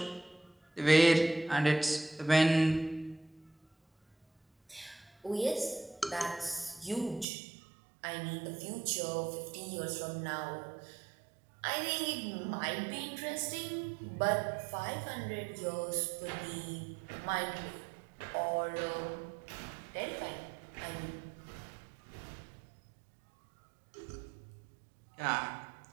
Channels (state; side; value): drops out; left; at 7.2 s